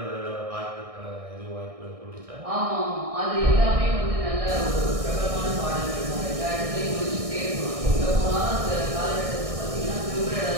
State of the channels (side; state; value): left; late; 1.6 ms